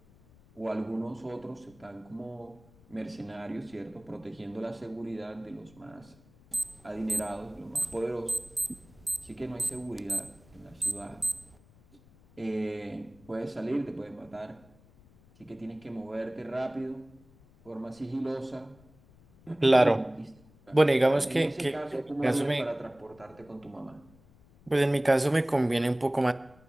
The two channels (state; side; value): noise; left; rumble, 26 dB below the sound